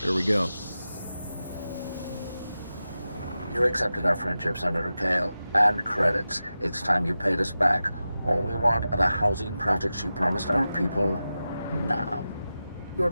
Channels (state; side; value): inverted; both; correlation -0.93